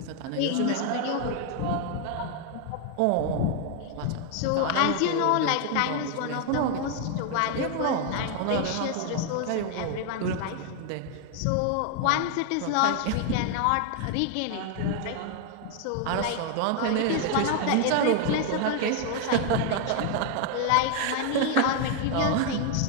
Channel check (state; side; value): different; both; correlation 0.00